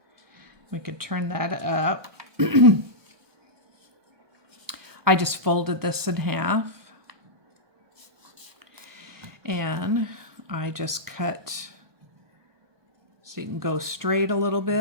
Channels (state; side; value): late; left; 1.2 ms